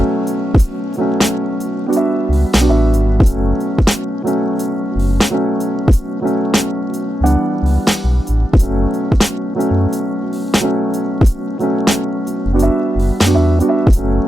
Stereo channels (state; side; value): normal; both; correlation 0.89